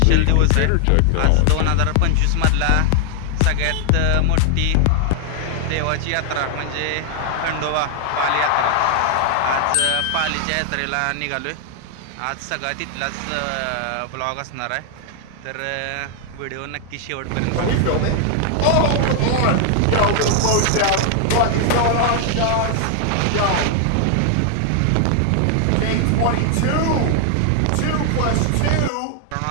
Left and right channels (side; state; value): both; different; correlation 0.00